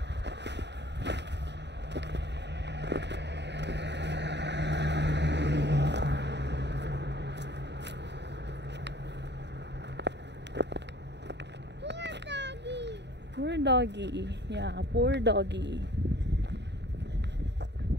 Poor doggy. Yeah, poor doggy.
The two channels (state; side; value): late; left; 0.50 ms